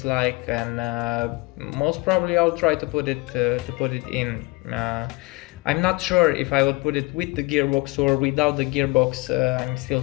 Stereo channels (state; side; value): quieter; right; 24.8 dB